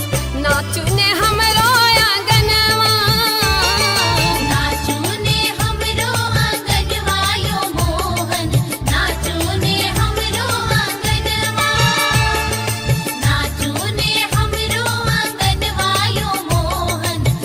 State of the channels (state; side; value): identical; both; correlation 1.00